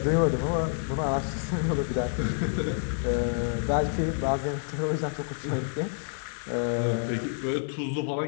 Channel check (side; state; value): right; silent; digital silence